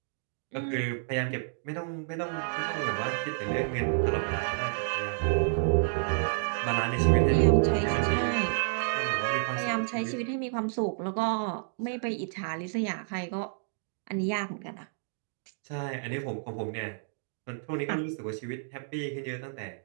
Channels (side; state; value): left; silent; digital silence